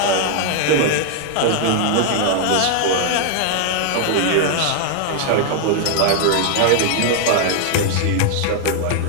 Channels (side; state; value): both; different; correlation 0.00